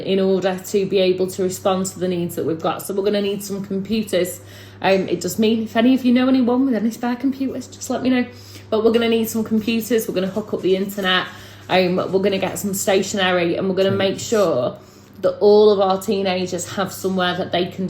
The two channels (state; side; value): identical; both; correlation 1.00